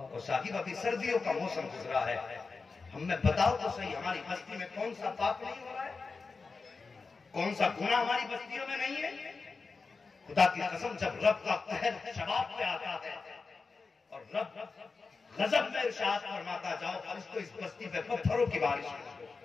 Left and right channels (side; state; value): right; quieter; 4.4 dB